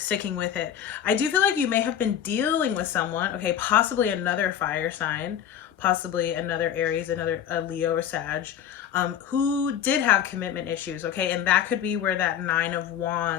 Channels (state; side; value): quieter; right; 9.6 dB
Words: sticking with it. I do feel like you may have been dealing with someone, okay, possibly another fire sign, possibly another Aries, another Leo or Sag, who did have commitment issues, okay? And that could be where that 9 of